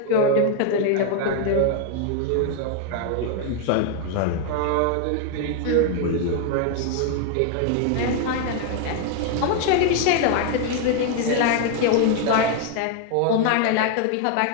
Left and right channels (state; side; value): different; both; correlation 0.00